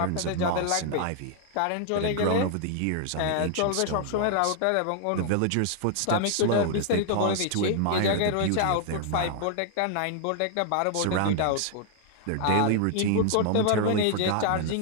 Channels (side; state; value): both; different; correlation 0.00